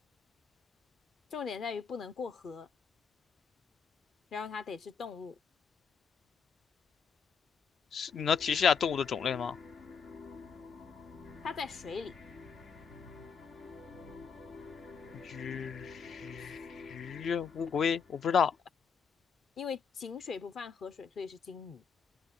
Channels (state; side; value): quieter; right; 6.3 dB